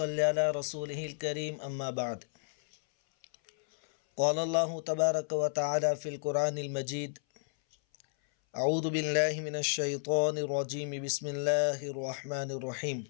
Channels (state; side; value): silent; right; 56 dB below the other